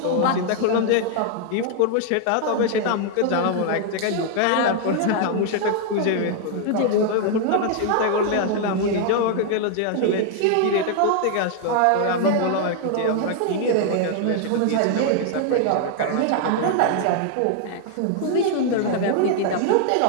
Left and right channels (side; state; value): both; different; correlation 0.00